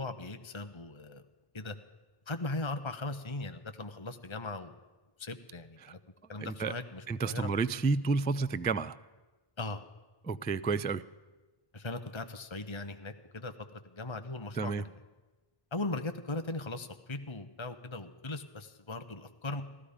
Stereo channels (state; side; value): late; right; 1.3 ms